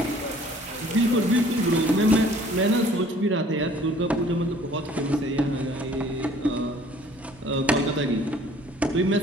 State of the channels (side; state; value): both; normal; correlation 0.54